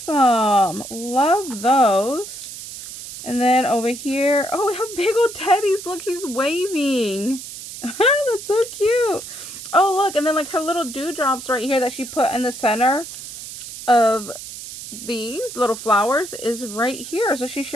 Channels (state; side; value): noise; right; hiss, 11 dB below the sound